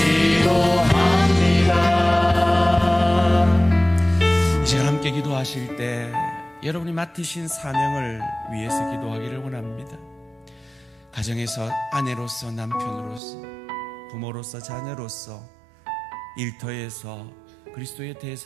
이 시간 함께 기도하실 때 여러분이 맡으신 사명을 위해서 기도하기를 원합니다. 가정에서 아내로서, 남편으로서, 부모로서, 자녀로서, 일터에서 그리스도의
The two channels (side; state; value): left; drops out; at 13.2 s